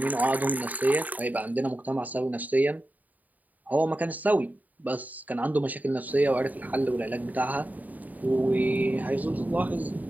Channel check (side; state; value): left; late; 0.078 ms